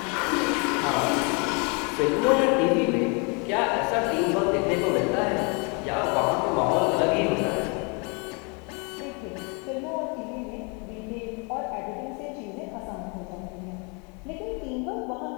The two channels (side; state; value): right; quieter; 33.6 dB